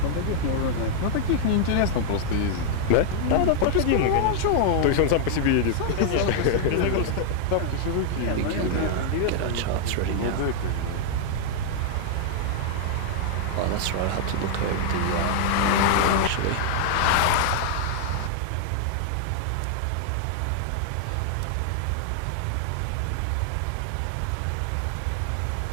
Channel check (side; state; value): both; different; correlation 0.00